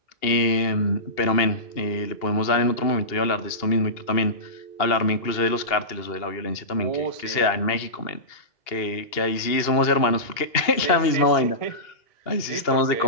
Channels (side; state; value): right; late; 2.8 ms